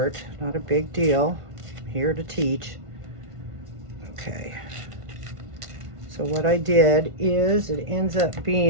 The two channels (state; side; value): late; left; 1.5 ms